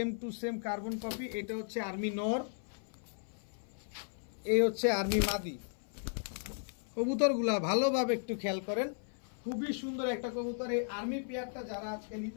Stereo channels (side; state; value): right; silent; 54 dB below the other